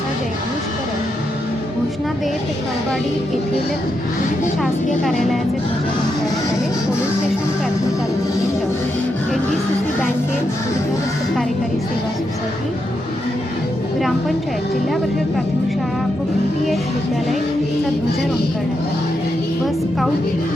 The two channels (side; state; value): both; normal; correlation 0.83